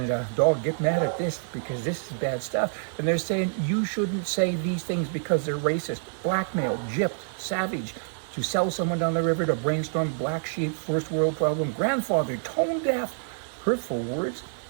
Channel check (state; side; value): silent; left; 60 dB below the other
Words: dog, get mad at this because this is bad stuff. And they're saying you shouldn't say these things because they're racist, blackmail, gypped, savage, to sell someone down the river, to brainstorm, black sheep, first world problem, grandfather, tone deaf, hurtful words.